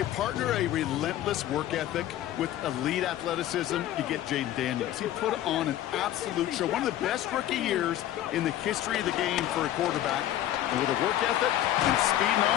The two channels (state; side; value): quieter; right; 12.9 dB